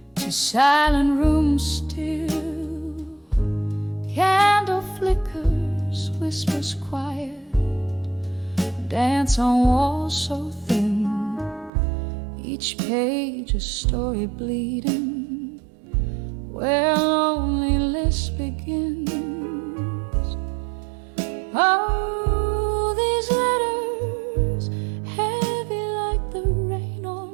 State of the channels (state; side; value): drops out; left; at 11.7 s